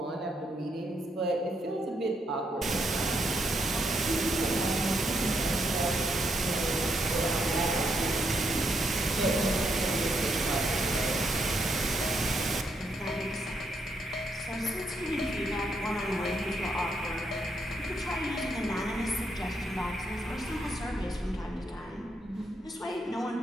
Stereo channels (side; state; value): both; normal; correlation 0.77